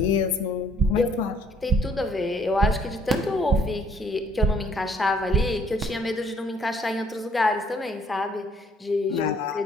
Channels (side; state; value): both; normal; correlation 0.62